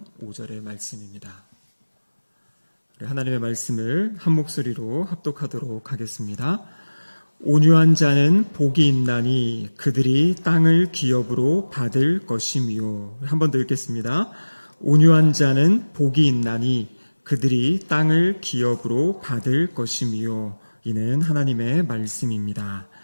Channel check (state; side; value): inverted; both; correlation -1.00